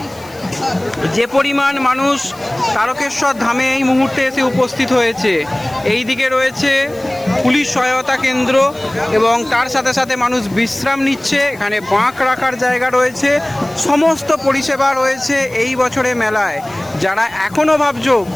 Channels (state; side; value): noise; left; hiss, 24 dB below the sound